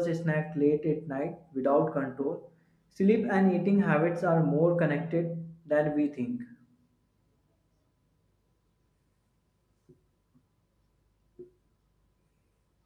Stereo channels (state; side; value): identical; both; correlation 1.00